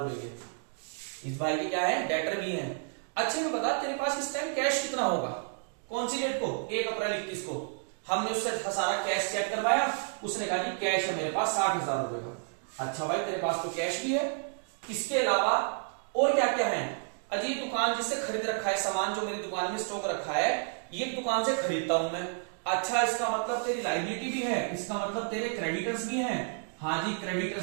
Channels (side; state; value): left; silent; 57 dB below the other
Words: रुपए के, इस भाई के क्या है डेटर भी हैं। अच्छा ये बता तेरे पास इस टाइम कैश कितना होगा, कौन सी डेट को, 1 अप्रैल 21 को। हमने उससे सारा कैश चेक करवाया, उसने कहा कि कैश है मेरे पास 60,000 रुपए का। अच्छा भाई तेरे पास तो कैश भी है, इसके अलावा और क्या क्या है? अजी दुकान जिससे खरीद रखा है, सामान जो मेरी दुकान में स्टॉक रखा है ये दुकान से खरीदता हूं मैं। अच्छा इसका मतलब तेरी लायबिलिटी भी है, इसका मतलब तेरे क्रेडिटर्स भी हैं। हाँ जी